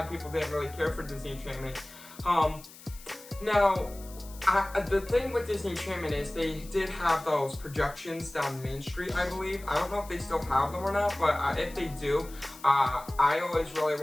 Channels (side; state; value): left; noise; hiss, 19 dB below the sound